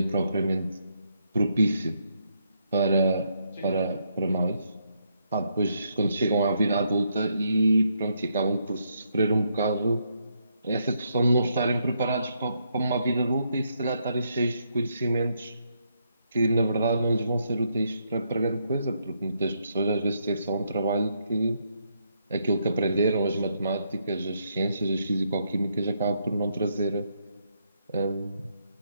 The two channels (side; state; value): both; inverted; correlation -0.77